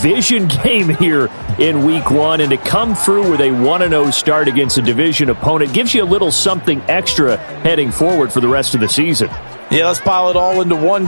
game here in Week 1. And to come through with a 1-0 start against a division opponent gives you a little something extra heading forward for the rest of the season. Yeah, let's pile it all into one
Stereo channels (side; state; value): both; inverted; correlation -1.00